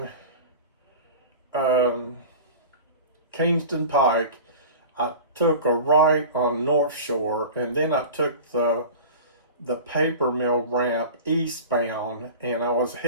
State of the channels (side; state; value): both; inverted; correlation -0.36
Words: Kingston Pike. I took a right on North Shore, and then I took the paper mill ramp eastbound, and I was